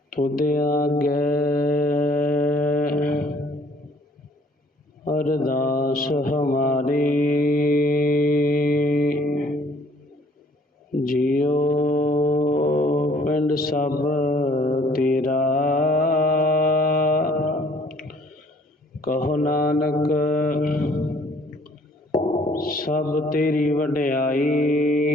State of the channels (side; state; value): both; normal; correlation 0.59